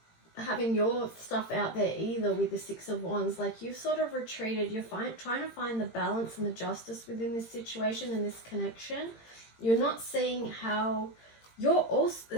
having your stuff out there either with the Six of Wands. Like, you've sort of retreated. You're trying to find the balance and the justice within this situation and this connection. You're not seeing how you're also...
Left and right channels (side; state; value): right; late; 18 ms